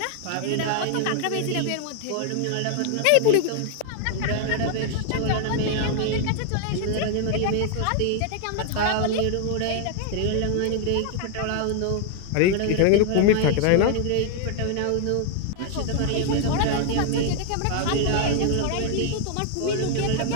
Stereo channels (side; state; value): both; different; correlation 0.00